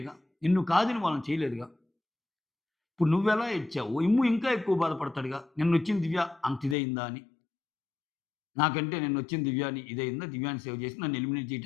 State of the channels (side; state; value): right; drops out; at 6.8 s